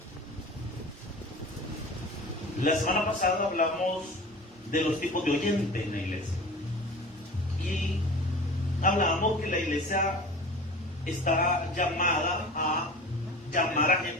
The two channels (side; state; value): both; normal; correlation 0.37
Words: La semana pasada hablamos de los tipos de oyente en la iglesia. Y hablábamos que la iglesia está llamada a llamar a